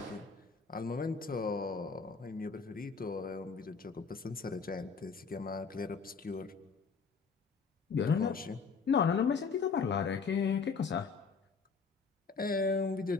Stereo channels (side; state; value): right; quieter; 5.3 dB